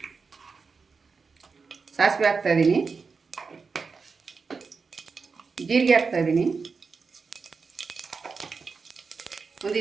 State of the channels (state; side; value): quieter; left; 4.9 dB